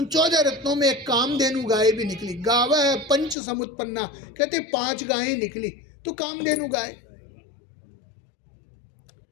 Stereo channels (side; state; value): right; drops out; at 3.4 s